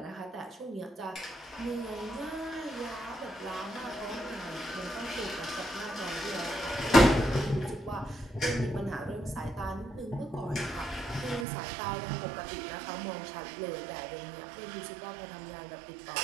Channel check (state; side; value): drops out; left; at 11.5 s